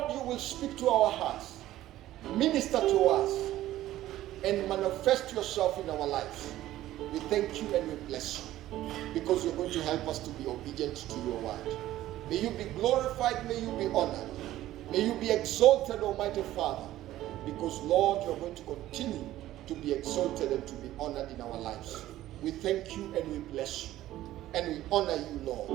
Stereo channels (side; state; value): left; quieter; 14.4 dB